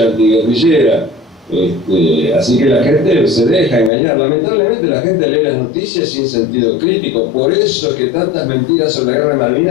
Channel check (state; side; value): drops out; right; at 3.9 s